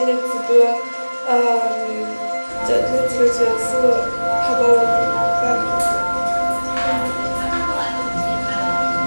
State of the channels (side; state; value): both; inverted; correlation -1.00